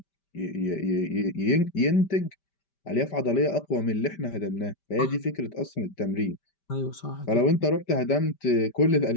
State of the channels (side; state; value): right; late; 5.1 ms